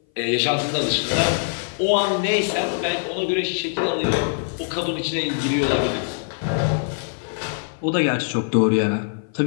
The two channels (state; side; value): silent; right; 58 dB below the other